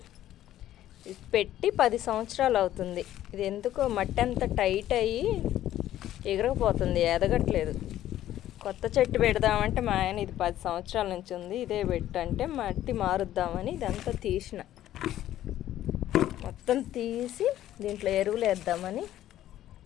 ఇది పెట్టి 10 సంవత్సరాలు అవుతుంది. ఇది ఎందుకో మట్టి అంత టైట్ అయ్యి ఎగరకపోతుంది, ఎదగట్లేదు. కొత్త చెట్టు పెడదామంటే మా ఆయన ఇది 10 సంవత్సరాల నుంచి ఉంది, ఇదే పెట్టంటే మట్టి మారుద్దామని ఇదంతా తీసిన. మొత్తం తీసి దీంట్లో ఎరువులు వేద్దామని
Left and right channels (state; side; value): quieter; right; 12.9 dB